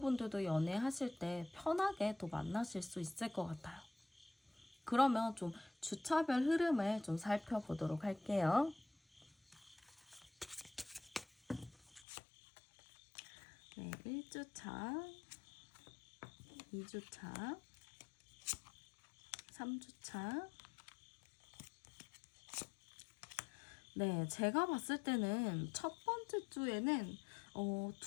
연애하실 때 편하게 또 만나실 수 있을 것 같아요. 그러면 좀 주차별 흐름을 좀 살펴보도록 할게요. 네, 1주차, 2주차, 3주차. 네, 제가 봤을 때는 첫 번째 주에는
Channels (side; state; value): right; drops out; at 12.1 s